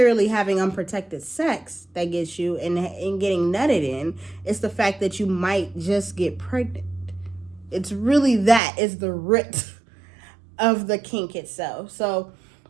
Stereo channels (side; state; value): left; drops out; at 8.6 s